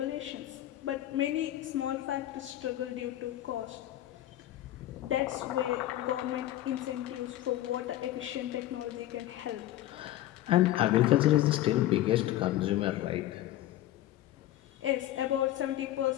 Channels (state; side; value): quieter; right; 14.0 dB